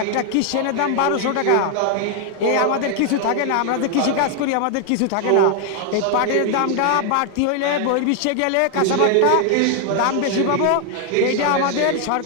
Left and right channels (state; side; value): different; both; correlation 0.00